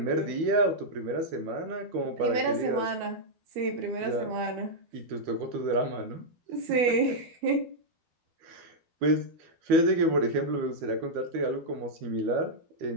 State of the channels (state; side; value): late; left; 12 ms